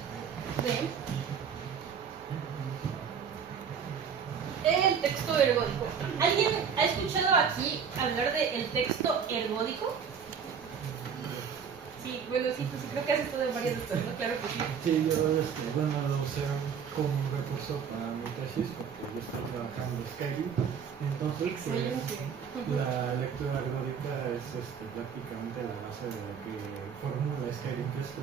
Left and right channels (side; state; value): left; quieter; 7.0 dB